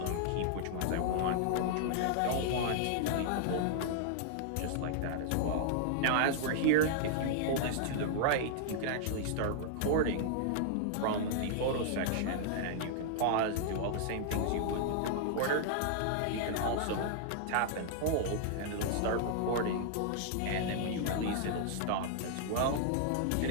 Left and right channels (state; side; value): different; both; correlation -0.01